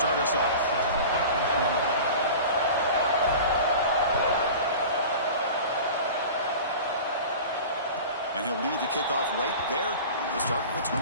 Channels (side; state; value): both; inverted; correlation -0.36